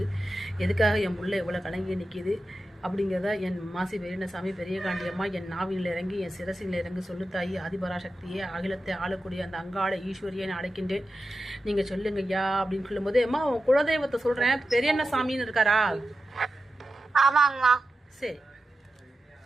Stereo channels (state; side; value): normal; both; correlation 0.91